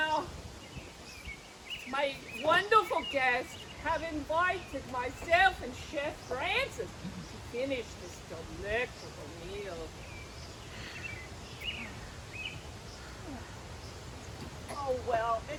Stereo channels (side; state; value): both; identical; correlation 1.00